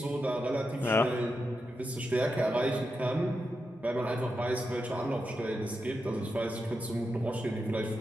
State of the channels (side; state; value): both; normal; correlation 0.87